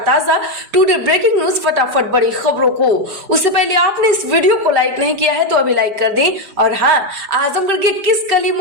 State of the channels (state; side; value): late; left; 5.0 ms